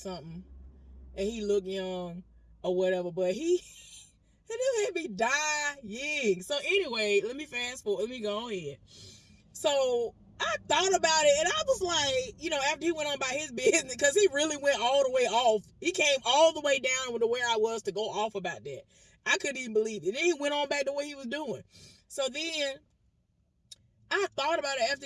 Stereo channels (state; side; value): identical; both; correlation 1.00